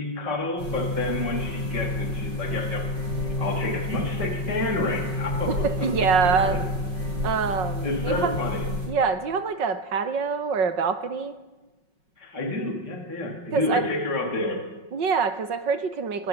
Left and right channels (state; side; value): late; left; 5.4 ms